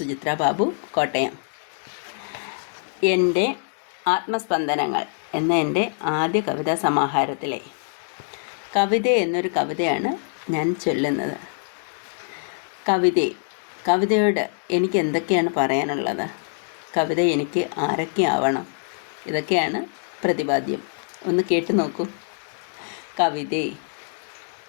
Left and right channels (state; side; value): silent; right; digital silence